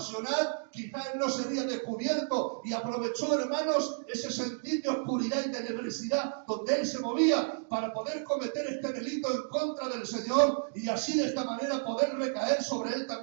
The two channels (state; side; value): silent; left; digital silence